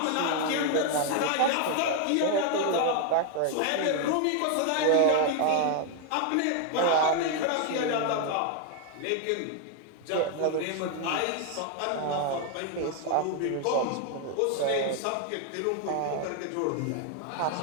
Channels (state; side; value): different; both; correlation 0.00